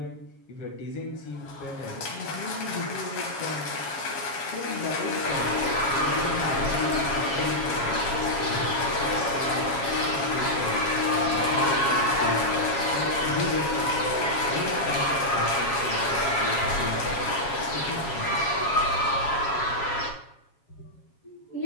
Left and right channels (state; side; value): late; right; 7.3 ms